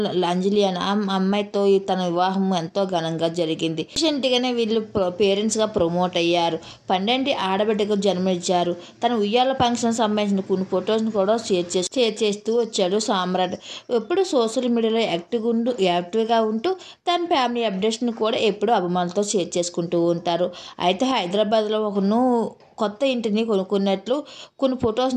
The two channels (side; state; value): both; identical; correlation 1.00